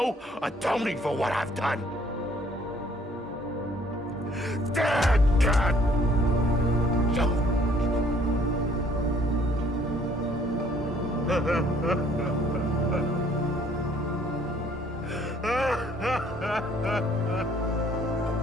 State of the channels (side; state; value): both; normal; correlation 0.61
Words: atoning for what I've done. Damn, God!